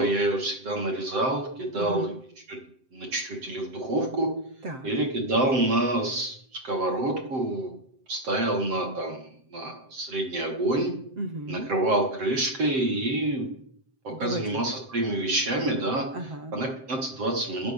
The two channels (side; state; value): left; late; 7.7 ms